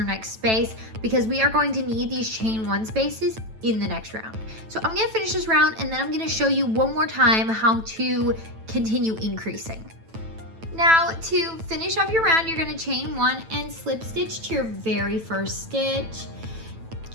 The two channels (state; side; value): late; left; 9.1 ms